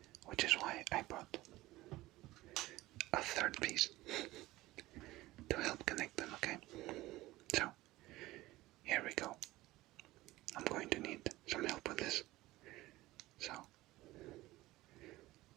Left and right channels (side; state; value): left; quieter; 18.0 dB